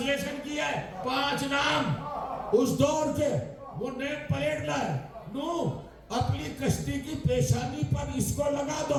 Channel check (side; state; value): both; identical; correlation 1.00